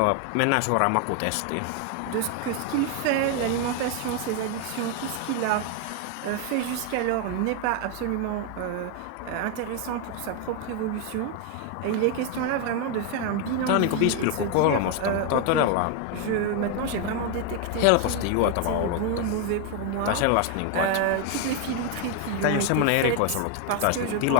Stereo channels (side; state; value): both; different; correlation 0.01